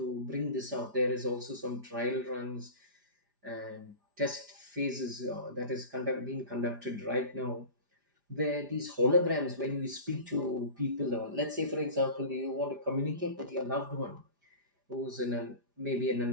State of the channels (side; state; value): left; late; 5.0 ms